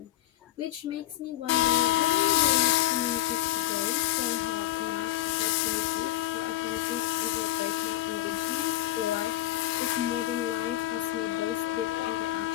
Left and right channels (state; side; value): quieter; right; 14.8 dB